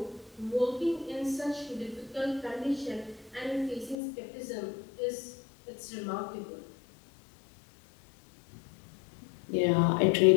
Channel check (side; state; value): right; drops out; at 4.0 s